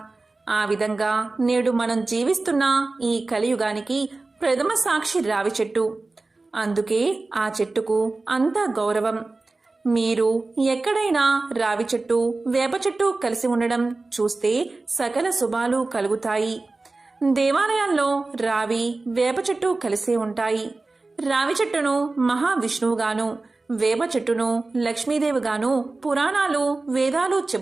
ఆ విధంగా నేడు మనం జీవిస్తున్న ఈ కలియుగానికి ప్రథమ సాక్షి రావి చెట్టు. అందుకే ఆ చెట్టుకు అంత గౌరవం. మీరు ఎక్కడైనా రావి చెట్టు, వేప చెట్టు కలిసి ఉండడం చూస్తే సకల శుభాలు కలుగుతాయి. దేవాలయాల్లో రావి, వేప చెట్టు కలిసే ఉంటాయి. రావి చెట్టును మహావిష్ణువుగాను, వేప చెట్టును లక్ష్మీదేవిగాను పురాణాలు, వేదాలు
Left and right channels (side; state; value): left; quieter; 3.4 dB